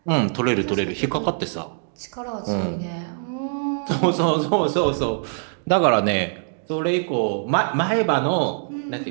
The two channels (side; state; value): left; silent; digital silence